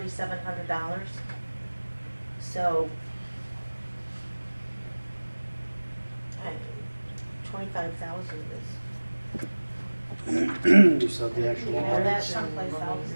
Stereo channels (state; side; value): inverted; both; correlation -1.00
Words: So, 25,000 is. You said the actual Yeah, audit. that's someplace else.